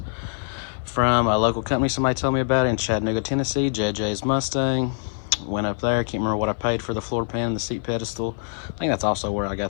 from a local company somebody told me about in Chattanooga, Tennessee, JJ's Mustang. Went up there, can't remember what I paid for the floor pan and the seat pedestal. I think that's also where I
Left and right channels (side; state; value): right; silent; 58 dB below the other